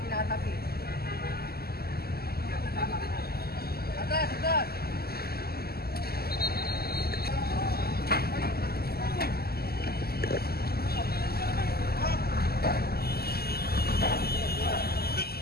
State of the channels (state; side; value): late; right; 0.45 ms